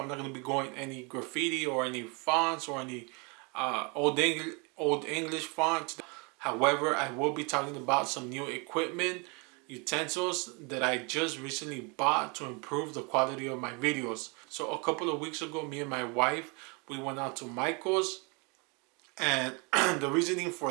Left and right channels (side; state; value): left; quieter; 31.3 dB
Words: not going to be going any graffiti or any fonts or any old English font. However, I will be talking about some new equipment, utensils that I just recently bought to improve the quality of my videos. So a couple of weeks ago, me and my wife, we went out to Michael's, and the reasoning